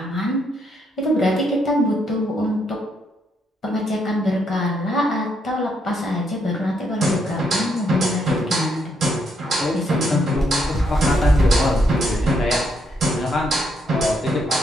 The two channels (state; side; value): normal; both; correlation 0.75